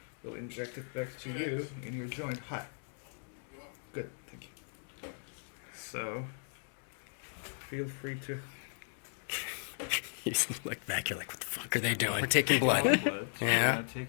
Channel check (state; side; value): silent; right; 54 dB below the other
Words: we'll inject it back to you in your joint. Hi. Good. Thank you. So, feel free to. You look back. You're like, what the fuck are they doing? We're taking blood. blood. We're Yeah. gonna